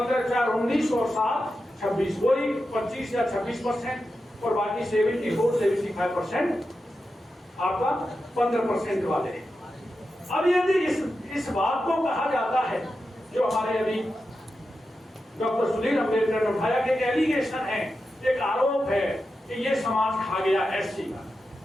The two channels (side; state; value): both; normal; correlation 0.90